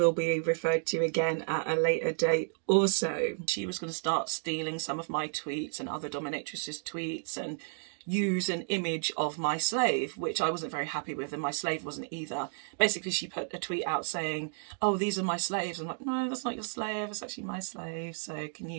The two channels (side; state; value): left; silent; 56 dB below the other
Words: be referred to again at a later date also. She was going to start stealing some of my tweets and other dominatrixes' tweets and use an image of my slave, which I wasn't very happy with, and my slave wasn't either. Basically, she put a tweet out saying, oh, these are my slaves. I'm like, no, that's not your slave, it's actually my slave, so can